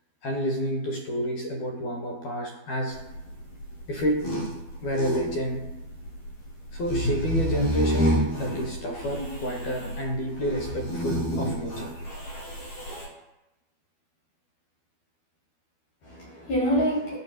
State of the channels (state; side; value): late; right; 12 ms